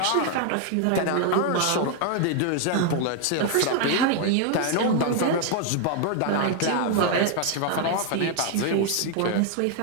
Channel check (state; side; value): different; both; correlation 0.00